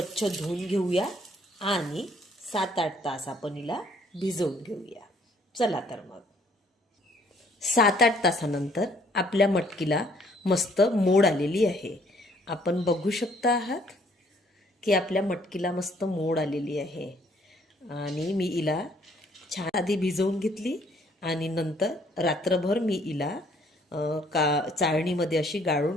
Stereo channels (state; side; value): normal; both; correlation 0.63